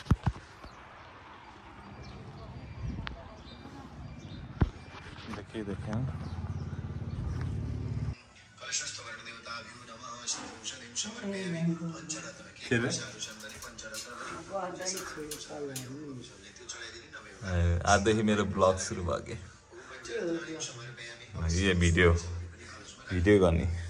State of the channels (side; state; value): both; identical; correlation 1.00